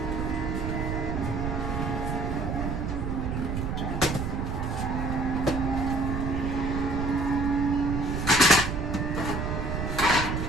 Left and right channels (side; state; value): right; noise; rumble, 2 dB below the sound